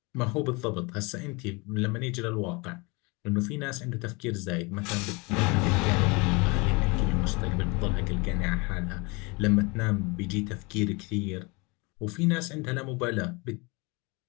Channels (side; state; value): right; quieter; 27.8 dB